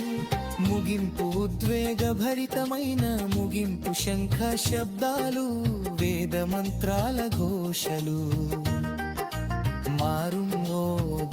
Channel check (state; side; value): identical; both; correlation 1.00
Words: ముగింపు ఉద్వేగభరితమైన ముగింపు శంఖ శబ్దాలు వేద మంత్రాల ఘోషలు